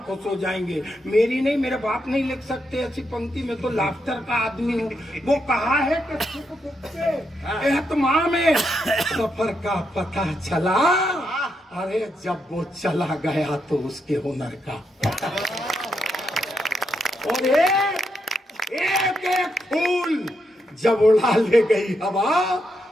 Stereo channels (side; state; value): both; normal; correlation 0.81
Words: खुश हो जाएंगे। मेरी नहीं, मेरे बाप नहीं लिख सकते ऐसी पंक्ति, में तो लाफ्टर का आदमी हूँ। वो कहा है कि सुख दुख के एहतमाम में सफर का पता चला, अरे जब वो चला गया तो उसके हुनर का। और एक एक फूल जब उड़ा ले गई हवा,